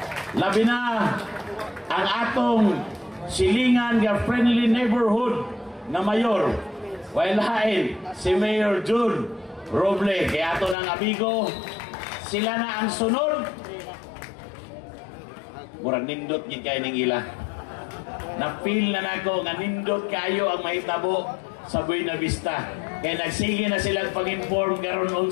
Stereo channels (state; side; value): drops out; right; at 10.8 s